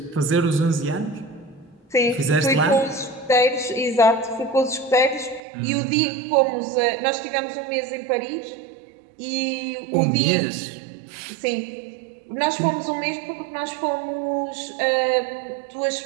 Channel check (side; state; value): left; drops out; at 5.4 s